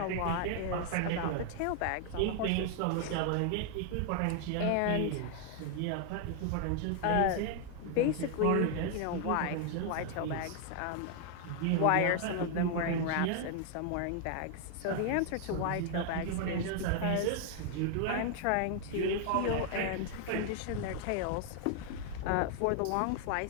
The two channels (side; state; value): both; different; correlation 0.00